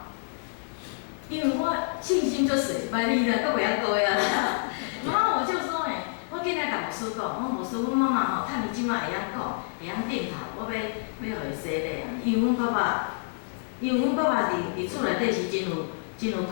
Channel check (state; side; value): silent; right; digital silence